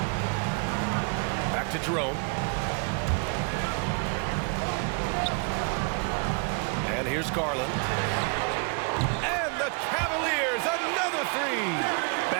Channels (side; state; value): left; quieter; 36.1 dB